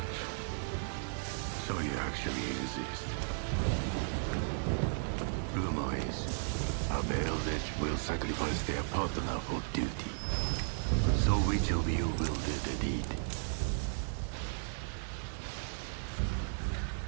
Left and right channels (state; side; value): silent; left; 54 dB below the other